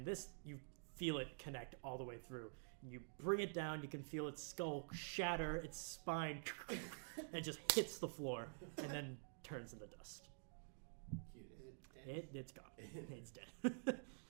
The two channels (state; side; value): silent; left; digital silence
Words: this, you feel it connect all the way through. You bring it down, you can feel its skull shatter, its spine, and it just hits the floor, and then turns into dust. Is it dead? It's gone. It's dead.